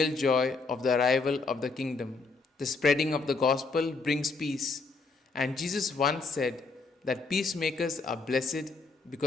joy of the arrival of the kingdom. The spreading of the gospel brings peace, and Jesus once said that peacemakers are blessed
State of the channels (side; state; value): right; quieter; 4.1 dB